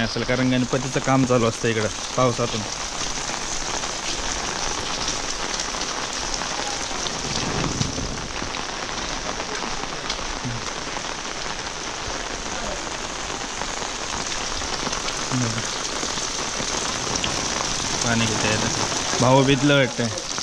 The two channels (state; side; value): identical; both; correlation 1.00